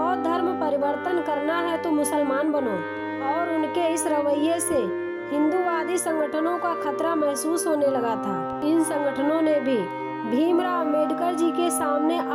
धर्म परिवर्तन करना है तो मुसलमान बनो, और उनके इस रवैये से हिंदूवादी संगठनों का खतरा महसूस होने लगा था। इन संगठनों ने भी भीमराव अंबेडकर जी के सामने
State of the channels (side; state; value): both; identical; correlation 1.00